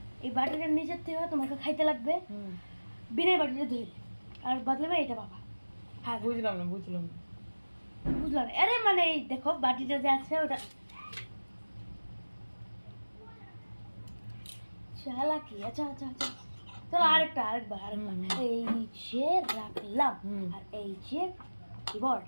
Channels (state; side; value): inverted; both; correlation -1.00